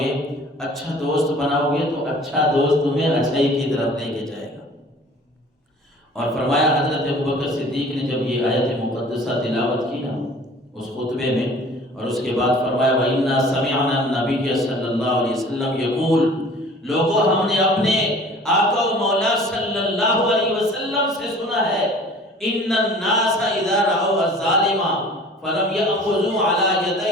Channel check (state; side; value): normal; both; correlation 0.47